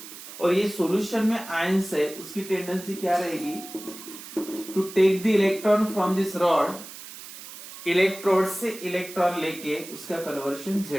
और ये सॉल्यूशन में आयंस है, उसकी टेंडेंसी क्या रहेगी, to take the electron from this rod, electrode से इलेक्ट्रॉन लेके उसका कन्वर्शन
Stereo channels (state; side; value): noise; right; hiss, 14 dB below the sound